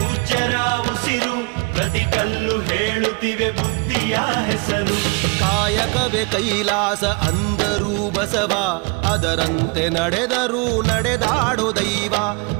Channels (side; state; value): left; quieter; 30.7 dB